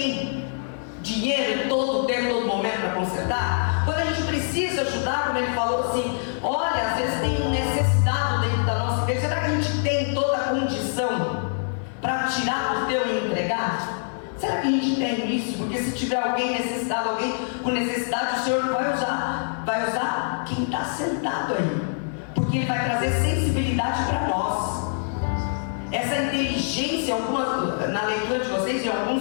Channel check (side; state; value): right; silent; digital silence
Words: dinheiro em todo tempo, todo momento para consertar? Quando a gente precisa ajudar, como ele falou assim, olha, às vezes tem necessidade dentro da nossa igreja, será que a gente tem toda a condição para tirar do teu e entregar? Será que a gente tem isso? Porque se tiver alguém necessitado, alguém com necessidade, o Senhor vai usar quem está sentado aí. Porque Ele vai trazer sensibilidade para nós. Essa inteligência, algumas, na leitura de vocês, e alguns